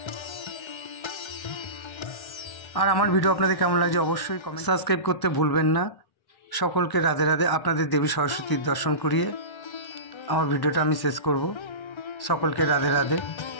আর আমার ভিডিও আপনাদের কেমন লাগছে অবশ্যই কমেন্ট, সাবস্ক্রাইব করতে ভুলবেন না। সকলকে রাধে রাধে। আপনাদের দেবী সরস্বতীর দর্শন করিয়ে আমার ভিডিওটা আমি শেষ করব। সকলকে রাধে রাধে।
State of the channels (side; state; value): right; late; 1.1 ms